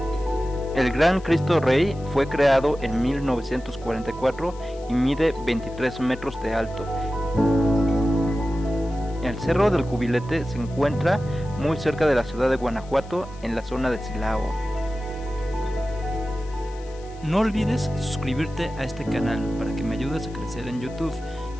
El Gran Cristo Rey fue creado en 1944 y mide 23 metros de alto. El Cerro del Cubilete se encuentra muy cerca de la ciudad de Guanajuato, en la zona de Silao. No olvides suscribirte a este canal para que me ayudes a crecer en YouTube.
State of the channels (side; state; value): left; noise; hiss, 25 dB below the sound